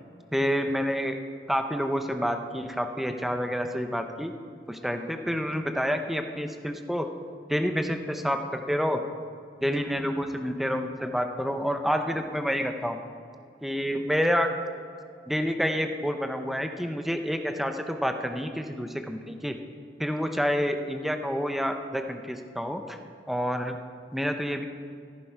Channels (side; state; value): both; normal; correlation 0.88